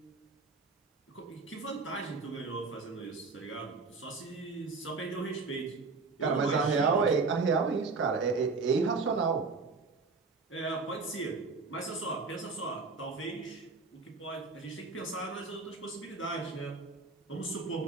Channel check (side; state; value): left; quieter; 4.2 dB